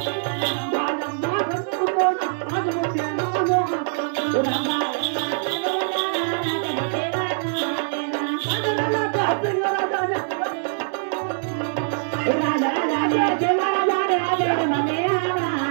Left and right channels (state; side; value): silent; left; digital silence